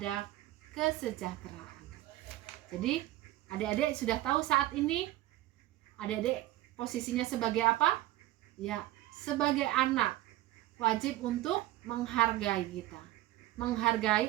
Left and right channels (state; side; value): quieter; left; 15.9 dB